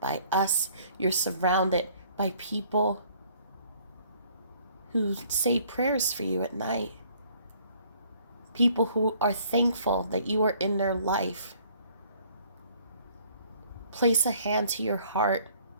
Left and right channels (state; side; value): inverted; both; correlation -0.59